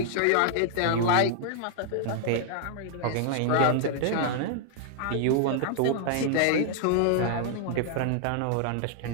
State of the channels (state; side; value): different; both; correlation 0.00